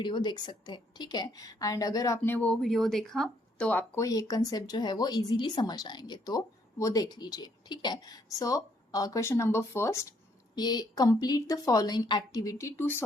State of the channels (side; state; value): both; normal; correlation 0.70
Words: देख सकते हैं, ठीक है। एंड अगर आपने वो वीडियो देखा तो आपको ये कंसेप्ट जो है वो इजीली समझ आएंगे, तो वो देख लीजिए, ठीक है। सो क्वेश्चन नंबर फर्स्ट, ये complete the following activity to